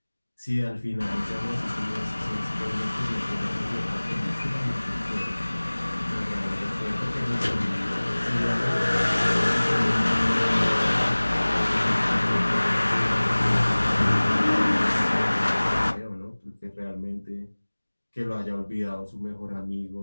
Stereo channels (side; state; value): both; inverted; correlation -1.00